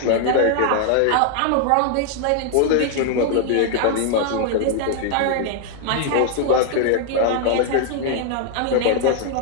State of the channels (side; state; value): both; different; correlation 0.00